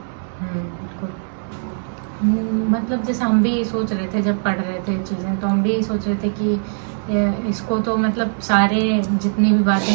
बिल्कुल। मतलब जैसे हम भी सोच रहे थे जब पढ़ रहे थे चीजें, तो हम भी सोच रहे थे कि इसको तो मतलब सारे जितनी भी बातें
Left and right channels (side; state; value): left; silent; digital silence